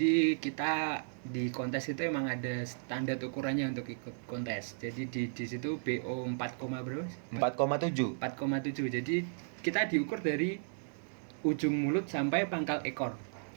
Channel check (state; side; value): silent; left; digital silence